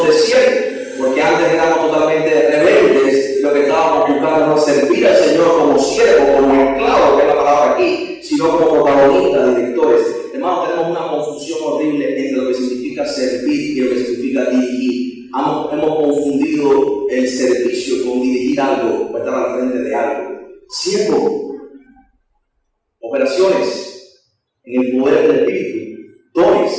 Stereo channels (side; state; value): both; identical; correlation 1.00